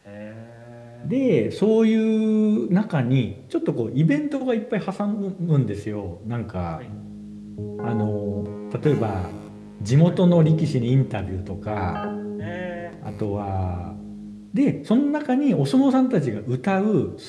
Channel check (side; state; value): both; identical; correlation 1.00